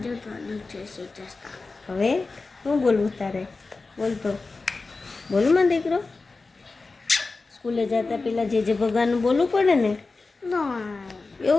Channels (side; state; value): right; quieter; 3.8 dB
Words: જય શ્રી કૃષ્ણ. હવે શું બોલવું તારે? બોલતો બોલું માં દીકરો. સ્કૂલે જતા પહેલાં જે ભગવાનનું બોલવું પડે ને?